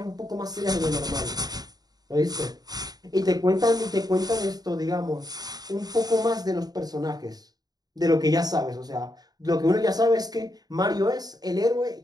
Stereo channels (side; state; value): left; late; 0.19 ms